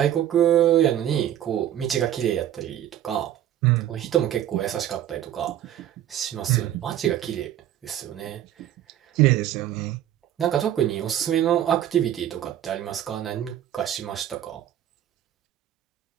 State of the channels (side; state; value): left; quieter; 11.5 dB